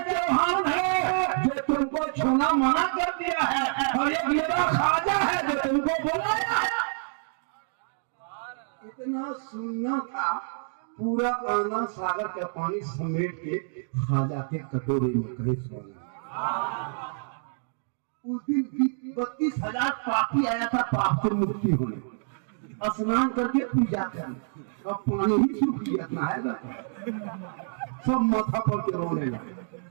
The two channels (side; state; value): left; silent; digital silence